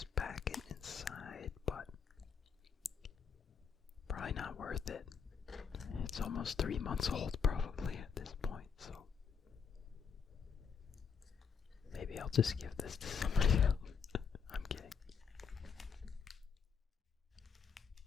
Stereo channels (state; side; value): quieter; right; 6.4 dB